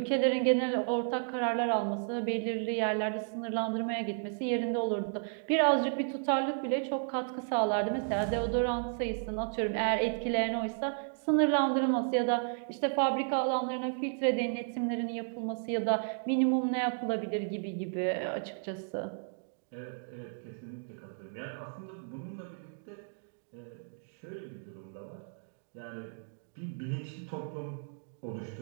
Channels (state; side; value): silent; left; digital silence